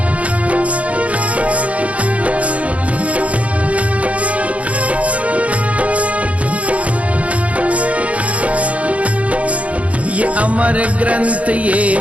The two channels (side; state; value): left; late; 0.066 ms